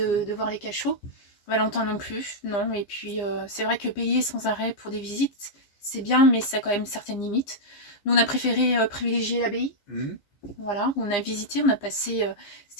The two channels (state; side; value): late; right; 14 ms